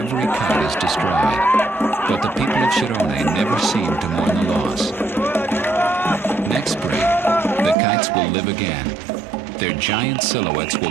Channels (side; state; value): left; drops out; at 7.8 s